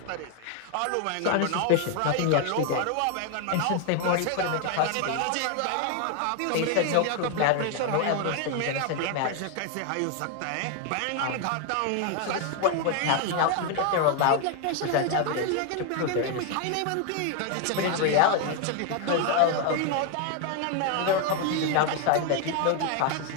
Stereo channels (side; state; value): both; different; correlation 0.01